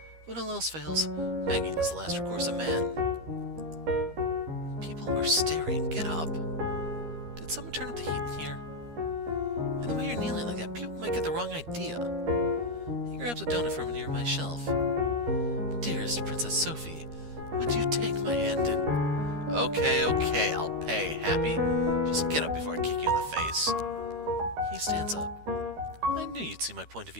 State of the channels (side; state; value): left; late; 13 ms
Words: When all else fails, begging is the last recourse of man. People are staring. Get up. Did someone turn up the heat in here? And the way you're kneeling like that, people might get the wrong idea. He grabs a donut from a nearby shelf. Dearest Princess Sophie, would you take my hand and... Okay, I'll pay, Happy. Just get up before I kick you in the face. He stands up. I knew you'd see my point of